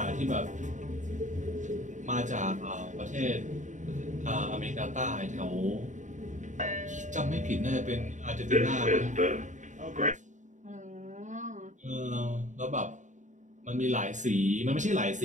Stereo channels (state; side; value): late; left; 0.36 ms